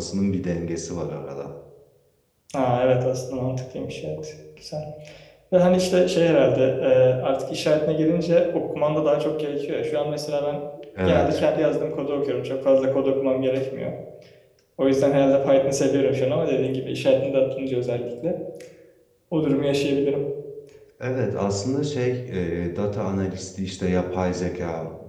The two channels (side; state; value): both; identical; correlation 1.00